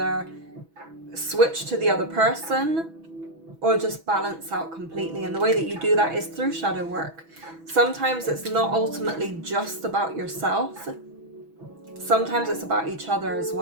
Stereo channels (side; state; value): left; late; 6.1 ms